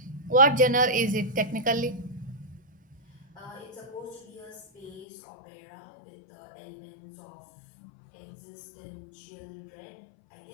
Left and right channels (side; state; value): right; drops out; at 5.1 s